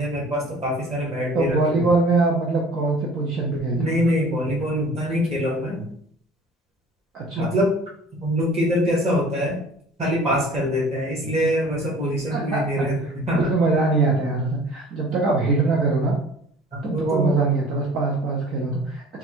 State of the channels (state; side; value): normal; both; correlation 0.48